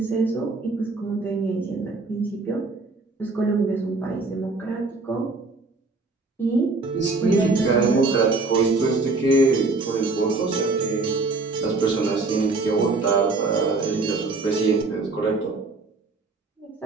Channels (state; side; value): quieter; left; 3.7 dB